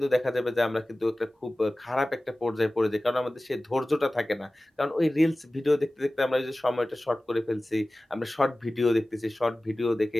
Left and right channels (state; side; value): normal; both; correlation 0.97